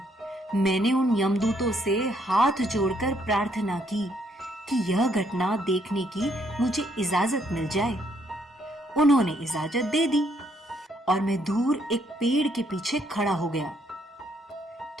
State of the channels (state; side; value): normal; both; correlation 0.71